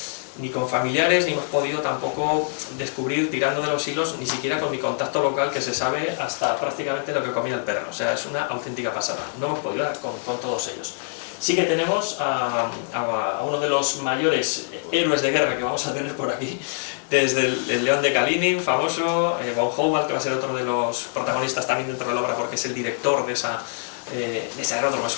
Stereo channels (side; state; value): right; silent; digital silence